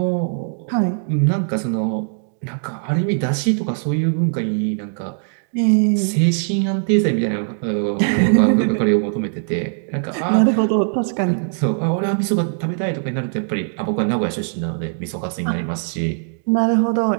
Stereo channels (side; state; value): left; silent; digital silence